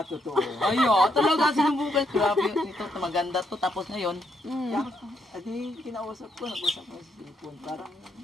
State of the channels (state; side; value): normal; both; correlation 0.76